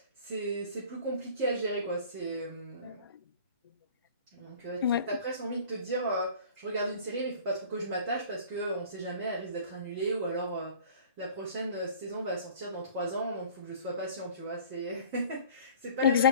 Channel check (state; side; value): inverted; both; correlation -0.46